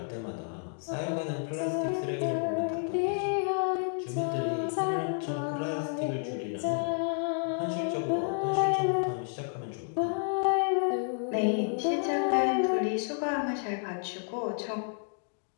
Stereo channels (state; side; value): silent; right; 57 dB below the other